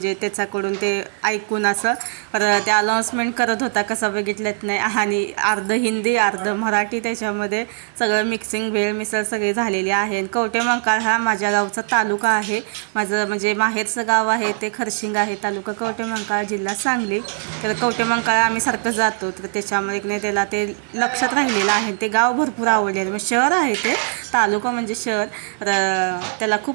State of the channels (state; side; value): silent; left; 56 dB below the other